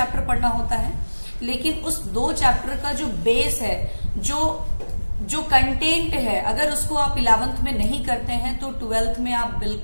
पढ़ना होता है, लेकिन उस 2 चैप्टर का जो बेस है, जो कंटेंट है, अगर उसको आप 11th में नहीं करते हैं तो 12th में आप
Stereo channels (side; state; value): both; inverted; correlation -1.00